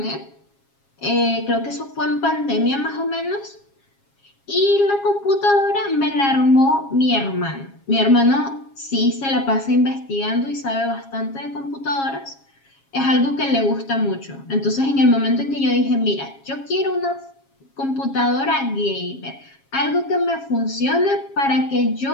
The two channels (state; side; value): late; right; 7.3 ms